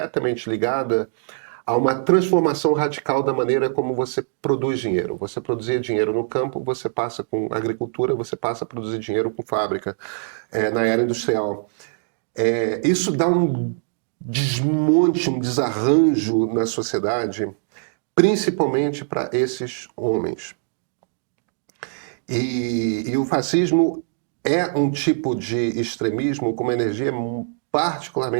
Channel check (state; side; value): silent; left; digital silence